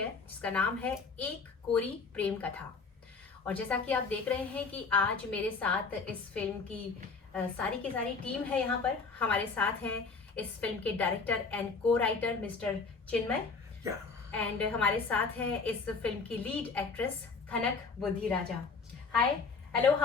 जिसका नाम है एक कोरी प्रेम कथा। और जैसा कि आप देख रहे हैं कि आज मेरे साथ इस फिल्म की सारी की सारी टीम है। यहाँ पर हमारे साथ हैं इस फिल्म के डायरेक्टर एंड को राइटर मिस्टर चिन्मय, एंड हमारे साथ हैं इस फिल्म की lead actress Khanak Budhiraja. Hi, hello,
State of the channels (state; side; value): quieter; right; 4.6 dB